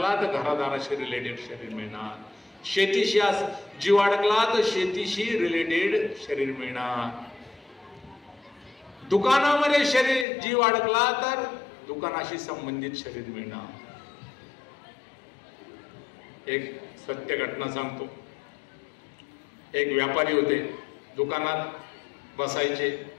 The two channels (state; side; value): drops out; right; at 10.2 s